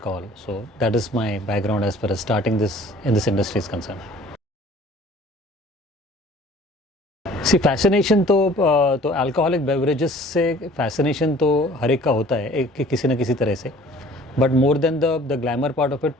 So that is my background as far as starting this in this industry is concerned. See fascination तो alcoholic beverages से fascination तो हर एक का होता है, एक किसी न किसी तरह से, but more than the glamour part of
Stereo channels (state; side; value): normal; both; correlation 0.50